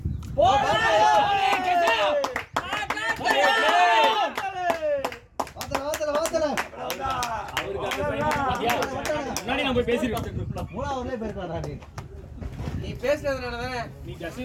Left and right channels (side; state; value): both; identical; correlation 1.00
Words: வாத்தல அவருக்கு அந்த பையன் பாத்தியா? முன்னாடி நான் போய் பேசிருக்கேன். மூணாவதுலயே போயிருக்காடா நீ. நீ பேசுறதுனால தானே நீ